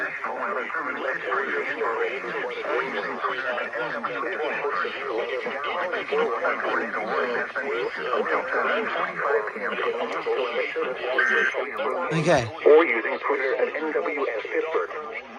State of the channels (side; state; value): both; identical; correlation 1.00